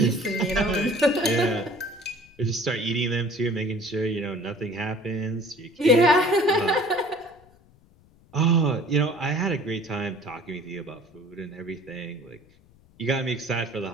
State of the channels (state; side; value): noise; left; rumble, 28 dB below the sound